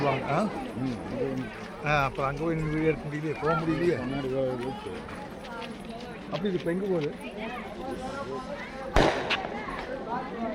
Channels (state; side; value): identical; both; correlation 1.00